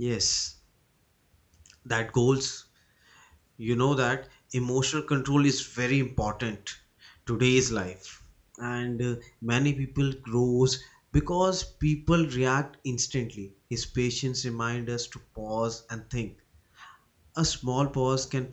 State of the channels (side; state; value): both; identical; correlation 1.00